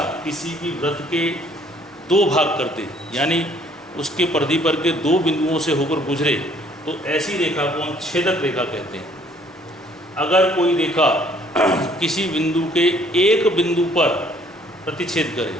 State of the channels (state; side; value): normal; both; correlation 0.60